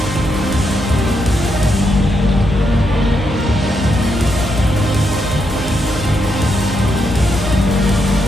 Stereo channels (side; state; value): both; normal; correlation 0.80